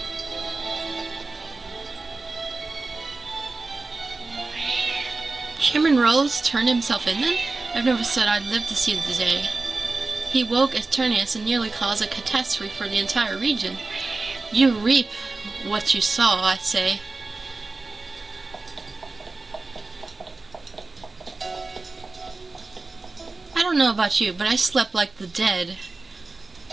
Chairman Rose turned himself in then? I've never said I'd live to see the day. He woke Eternius and nearly caused a catastrophe for the entire region. You reap what you sow, I say. I don't know about you, but I slept like the dead.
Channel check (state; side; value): quieter; left; 3.5 dB